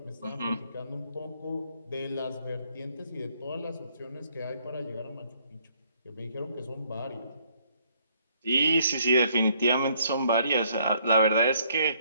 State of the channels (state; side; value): inverted; both; correlation -0.66